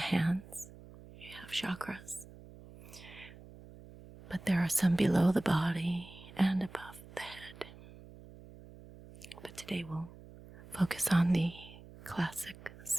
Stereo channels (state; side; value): noise; right; hum, 18 dB below the sound